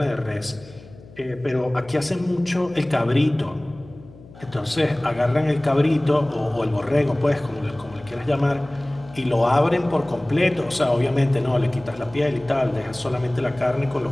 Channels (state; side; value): noise; left; hum, 21 dB below the sound